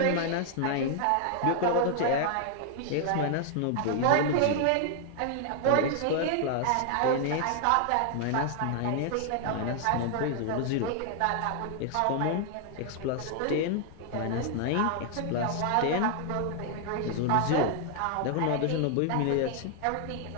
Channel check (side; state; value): both; different; correlation 0.00